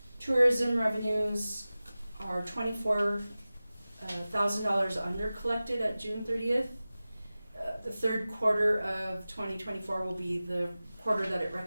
Tourism revenues are $24,000 under collected at June 30th. The third quarter of 2024 will be the quarter that it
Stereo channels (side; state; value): both; inverted; correlation -0.96